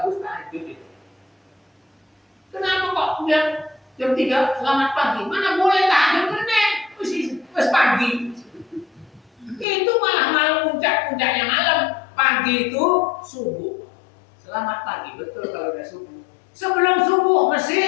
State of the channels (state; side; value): drops out; right; at 9.7 s